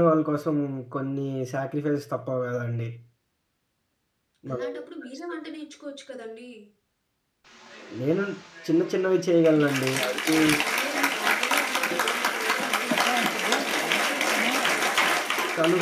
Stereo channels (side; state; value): both; identical; correlation 1.00